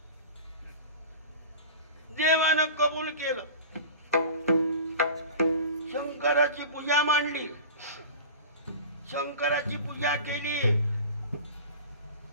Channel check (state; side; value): inverted; both; correlation -0.36